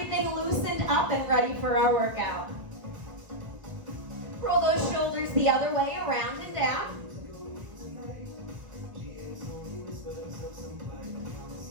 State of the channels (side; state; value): left; late; 1.3 ms